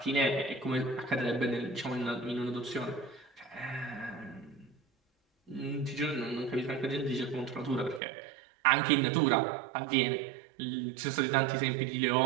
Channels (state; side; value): drops out; left; at 8.0 s